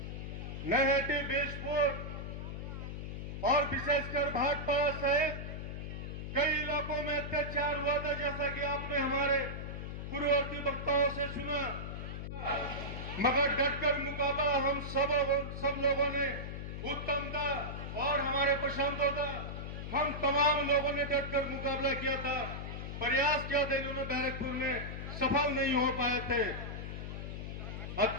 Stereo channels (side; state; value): left; noise; hum, 6 dB below the sound